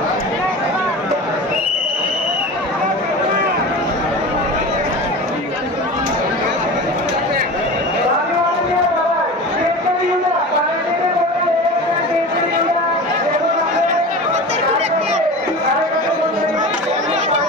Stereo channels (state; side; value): normal; both; correlation 0.32